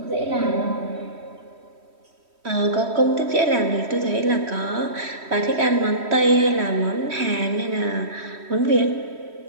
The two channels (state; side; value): late; left; 3.1 ms